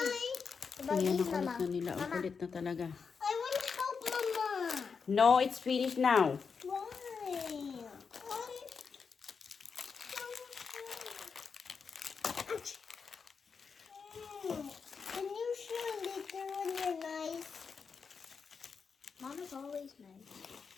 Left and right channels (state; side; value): quieter; right; 5.6 dB